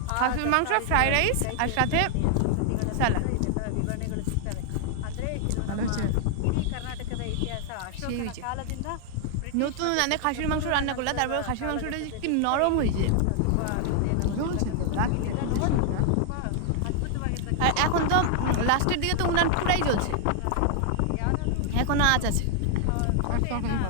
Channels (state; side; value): different; both; correlation 0.00